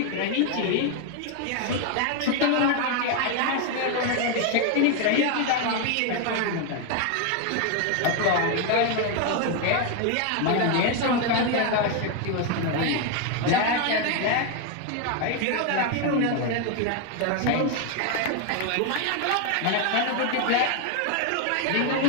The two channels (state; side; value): different; both; correlation 0.01